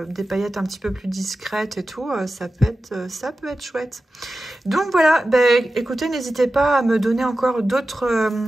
des paillettes un petit peu plus discrètes et tout, ça peut être chouette. Donc voilà, ben, écoutez, n'hésitez pas à me donner encore d'autres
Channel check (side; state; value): both; normal; correlation 0.94